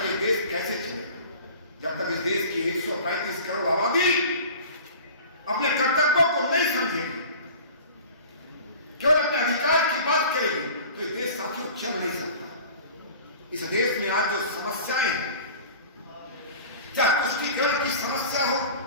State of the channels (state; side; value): inverted; both; correlation -0.41